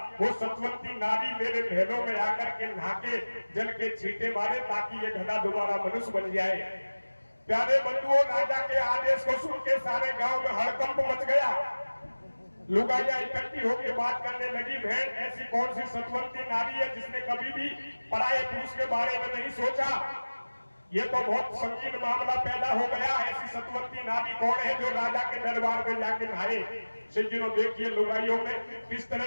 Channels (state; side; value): inverted; both; correlation -1.00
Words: वो सतवंती नारी मेरे महलों में आकर के नहाके जल के छींटे मारे, ताकि ये गधा दोबारा मनुष्य बन जाए। प्यारे बंधुओं, राजा के आदेश को सुन के सारे गांव में हड़कंप मच गया। लुगाइयां इकट्ठी होकर बात करने लगी, बहन ऐसी कौन सी सतवंती नारी है जिसने कभी भी पराये पुरुष के बारे में नहीं सोचा? ये तो बहुत संगीन मामला पैदा हो गया। ऐसी सतवंती नारी कौन है जो राजा के दरबार में जाके नहाए? सज्जनों, देखिए लुगाइयों में किस